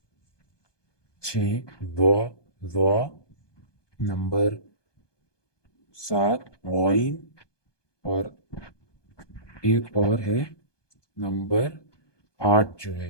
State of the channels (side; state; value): right; late; 1.2 ms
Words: 6 ضا ضا، نمبر 7 غائن، اور ایک اور ہے نمبر 8 جو